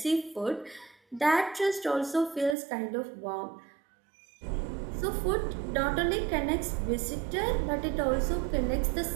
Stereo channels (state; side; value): drops out; left; at 2.6 s